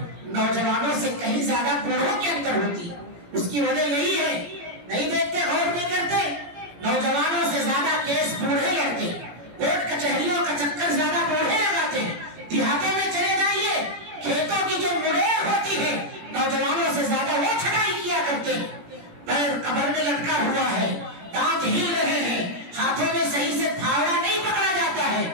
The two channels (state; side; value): late; left; 17 ms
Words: نوجوانوں سے کہیں زیادہ بوڑھوں کے اندر ہوتی ہے. اس کی وجہ یہی ہے، نہیں دیکھتے، غور نہیں کرتے. نوجوانوں سے زیادہ کیس بوڑھے لڑتے، کورٹ کچہریوں کا چکر زیادہ بوڑھے لگاتے. دیہاتوں میں چلے جائیے، کھیتوں کی جو مڑیر ہوتی ہے نوجوانوں سے زیادہ وہ چھٹائی کیا کرتے ہیں. پیر قبر میں لٹکا ہوا ہے، دانت ہل رہے ہیں، ہاتھوں میں صحیح سے پھاوڑا نہیں پکڑا جاتا ہے،